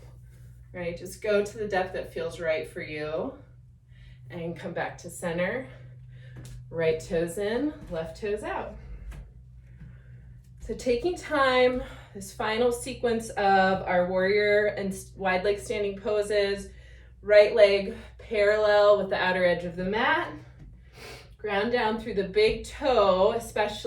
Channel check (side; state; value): both; identical; correlation 1.00